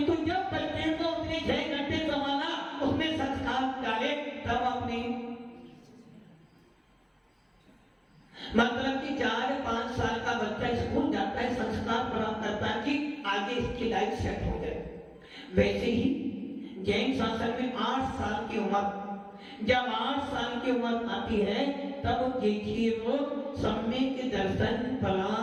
जब बच्चे को उसने 6 घंटे संभाला, उसमें संस्कार डाले, तब आपने मतलब कि 4-5 साल का बच्चा स्कूल जाता है, संस्कार प्राप्त करता है कि आगे इसकी लाइफ सेट हो जाए। वैसे ही जैन शासन में 8 साल की उम्र, जब 8 साल की उम्र आती है तब देखिए वो सम्यक दर्शन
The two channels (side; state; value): both; identical; correlation 1.00